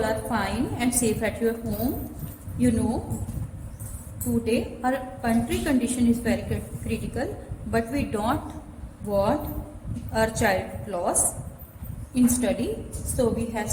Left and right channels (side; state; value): both; identical; correlation 1.00